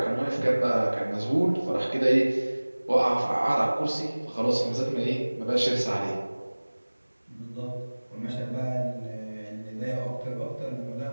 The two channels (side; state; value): both; inverted; correlation -1.00